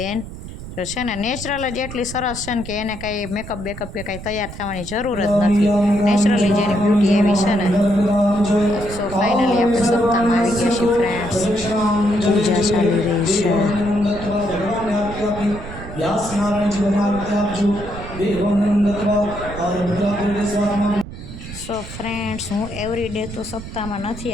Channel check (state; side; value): noise; right; rumble, 12 dB below the sound